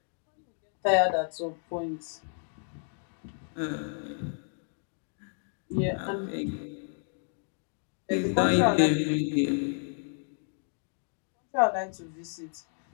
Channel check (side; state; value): right; silent; 57 dB below the other